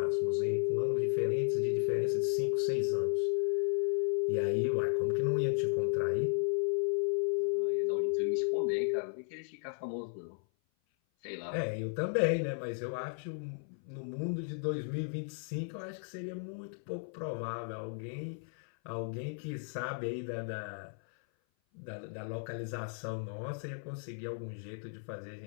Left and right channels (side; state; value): right; silent; 55 dB below the other